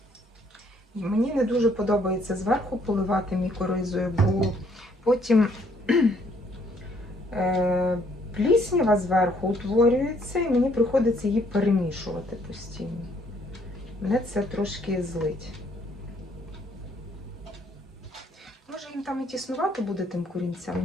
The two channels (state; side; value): normal; both; correlation 0.66